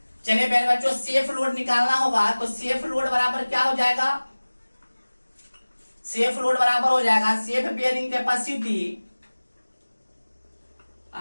चलिए प्यारे बच्चों, सेफ लोड निकालना होगा तो सेफ लोड बराबर क्या हो जाएगा? सेफ लोड बराबर हो जाएगा safe bearing capacity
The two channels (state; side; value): inverted; both; correlation -1.00